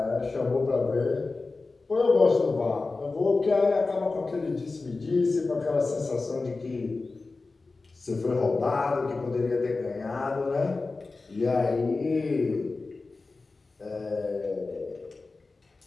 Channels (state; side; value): quieter; right; 3.7 dB